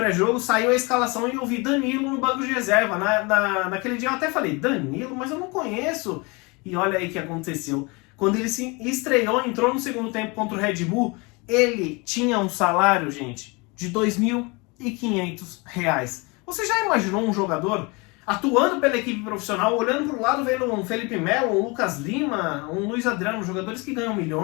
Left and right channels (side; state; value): right; quieter; 27.9 dB